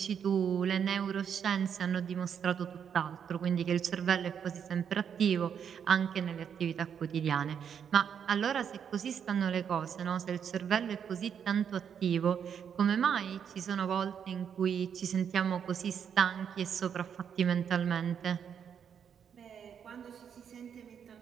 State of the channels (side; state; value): left; quieter; 7.9 dB